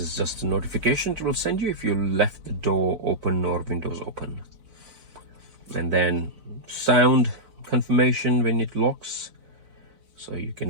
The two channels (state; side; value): late; left; 4.0 ms